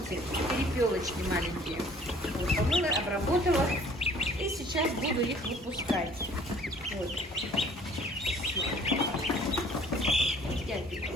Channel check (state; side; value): normal; both; correlation 0.54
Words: перепелочки маленькие. Вот, помыла, обработала. И сейчас буду их выпускать. Вот.